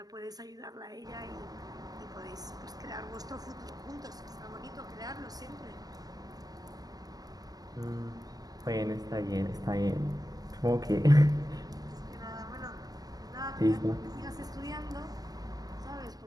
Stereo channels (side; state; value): left; late; 0.18 ms